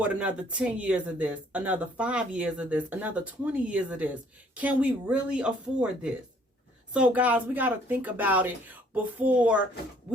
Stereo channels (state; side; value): normal; both; correlation 0.61